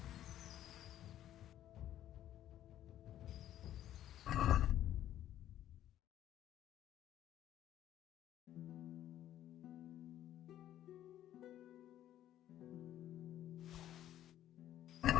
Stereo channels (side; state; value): right; quieter; 12.1 dB